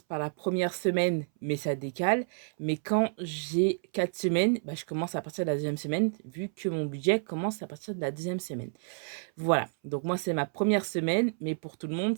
par la première semaine, mais ça décale. Mais quand j'ai 4 semaines, bah, je commence à partir de la deuxième semaine, vu que mon budget commence à partir de la deuxième semaine. Voilà. Donc moi, c'est ma première semaine, mais pour tout le monde,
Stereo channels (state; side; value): silent; left; 58 dB below the other